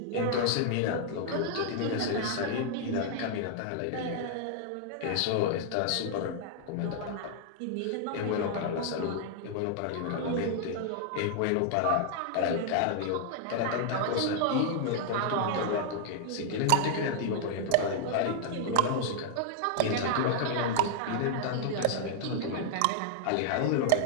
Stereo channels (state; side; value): different; both; correlation 0.00